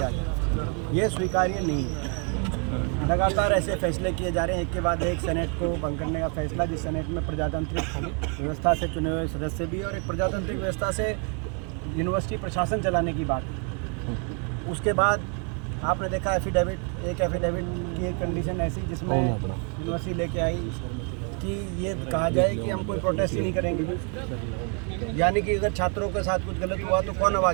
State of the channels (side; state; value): left; quieter; 38.7 dB